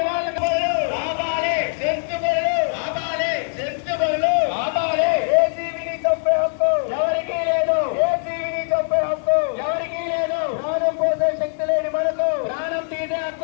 కాపాడదాం. ఆపాలి సెంచుబడులు, ఆపాలి సెంచుబడులు, ఆపాలి. ఏ జీవిని చంపే హక్కు ఎవరికీ లేదు. ఏ జీవిని చంపే హక్కు ఎవరికీ లేదు. ప్రాణం పోసే శక్తి లేని మనకు ప్రాణం తీసే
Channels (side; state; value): right; silent; digital silence